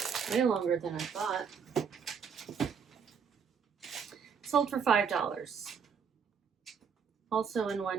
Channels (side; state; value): left; quieter; 6.5 dB